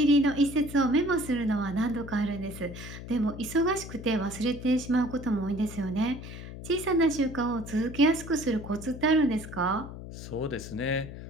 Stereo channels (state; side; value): noise; left; hum, 11 dB below the sound